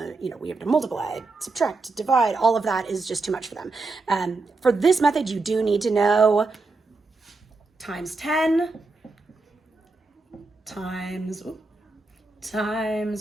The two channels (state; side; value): quieter; left; 3.6 dB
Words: we have to multiply, subtract, divide. All of that is just too much for them. For this method, you do need to know times 10 times